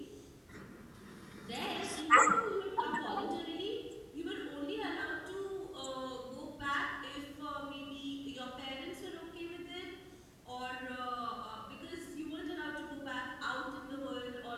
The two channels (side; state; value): both; identical; correlation 1.00